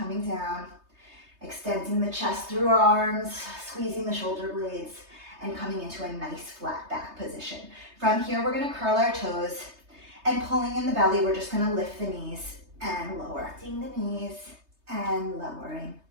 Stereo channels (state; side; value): late; left; 3.3 ms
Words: down, extending the chest through our arms, squeezing the shoulder blades, and coming into a nice flat back position. From here, we're gonna curl our toes, and pulling in the belly, we're just gonna lift the knees and lower. Lifting the knees and lowering.